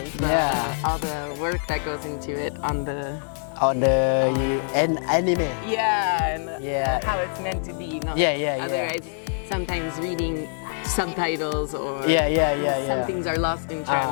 work that goes into it on the anime. Yeah, and how it's meant to be. Otherwise, sometimes reading subtitles or some things are lost in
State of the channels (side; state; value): right; silent; 61 dB below the other